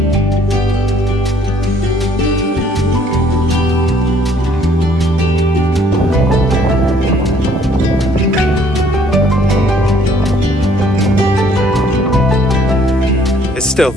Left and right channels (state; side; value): normal; both; correlation 0.62